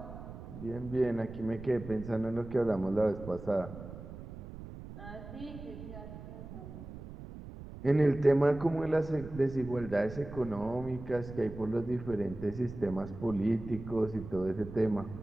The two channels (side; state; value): right; noise; rumble, 12 dB below the sound